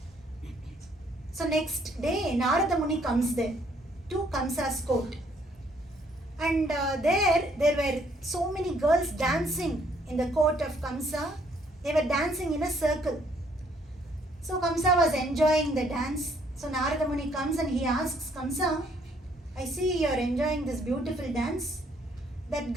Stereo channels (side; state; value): both; normal; correlation 0.66